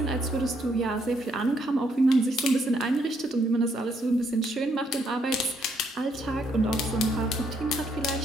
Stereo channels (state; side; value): normal; both; correlation 0.72